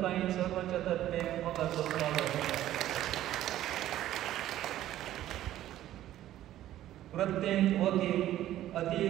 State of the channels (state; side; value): quieter; left; 13.3 dB